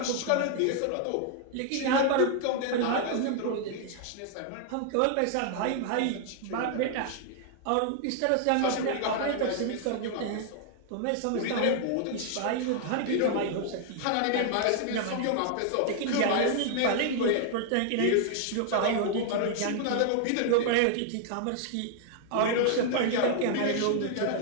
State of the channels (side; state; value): both; different; correlation 0.00